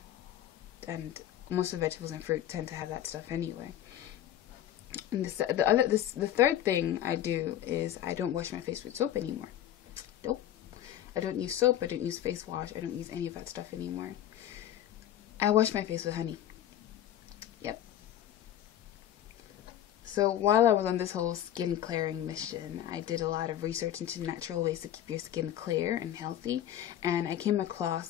most of the vegetables and fruit tend to have that stuff anyway. And the third thing I do is I don't wash my face with soap anymore. Nope. I don't use soap. I don't use face wash. I don't use any of that stuff anymore. I wash my face with honey. Yep. So while I was on this whole skin clearing mission, I did a lot of research into natural ways to keep your skin clear and healthy, and I came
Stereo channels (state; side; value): quieter; right; 11.4 dB